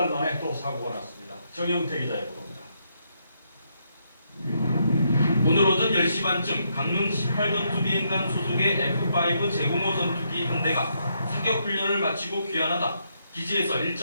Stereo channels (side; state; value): both; inverted; correlation -0.77